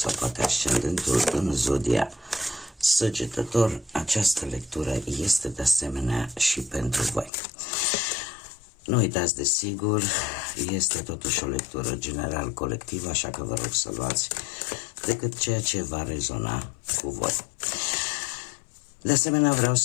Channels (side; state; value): right; drops out; at 7.3 s